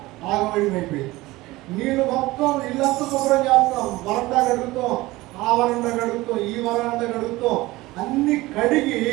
ఆగమడిమైపోయింది. నీళ్లు మొత్తం ఇల్లంతా శుభ్రం చేస్తాం, వరండా కడుగుతాం, ఆ వరండా కడుగుతాం, ఈ వరండా కడుగుతాం, అన్ని కడిగి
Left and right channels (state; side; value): quieter; left; 19.4 dB